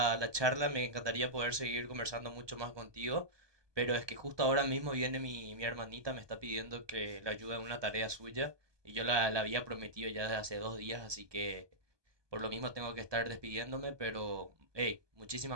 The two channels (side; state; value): left; late; 1.2 ms